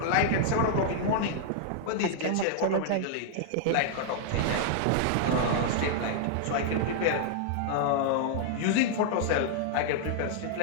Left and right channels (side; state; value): both; different; correlation -0.01